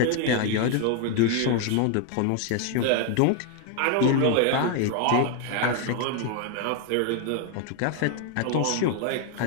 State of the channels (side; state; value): both; different; correlation 0.00